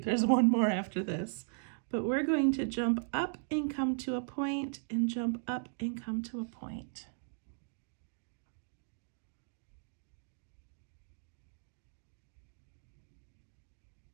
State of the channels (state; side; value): silent; left; digital silence